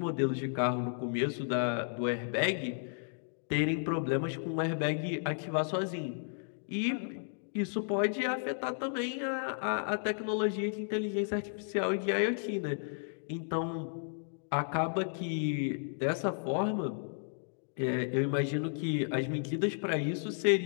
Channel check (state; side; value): silent; right; digital silence